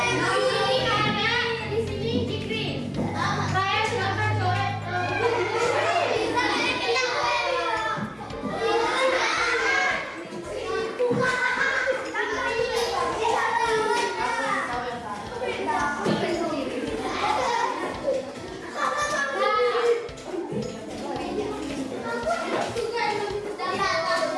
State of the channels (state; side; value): identical; both; correlation 1.00